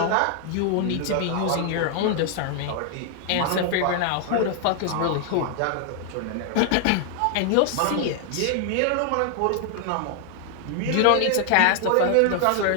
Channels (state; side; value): different; both; correlation 0.00